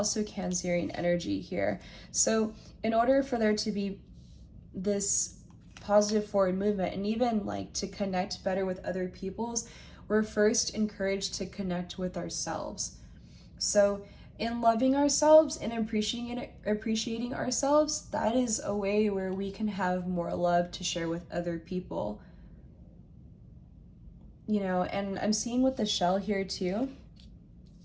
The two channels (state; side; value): identical; both; correlation 1.00